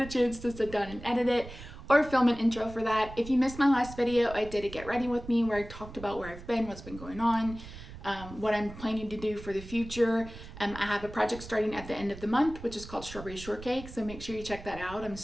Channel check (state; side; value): noise; right; rumble, 14 dB below the sound